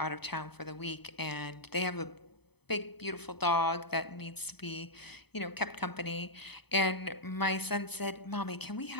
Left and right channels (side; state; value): right; late; 0.98 ms